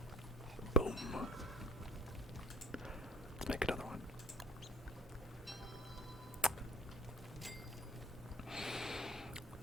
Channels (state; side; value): normal; both; correlation 0.50